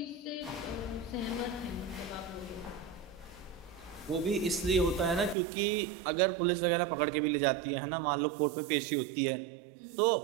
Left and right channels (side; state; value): left; drops out; at 5.4 s